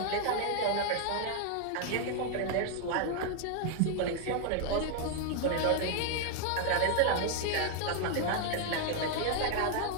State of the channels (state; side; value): different; both; correlation 0.00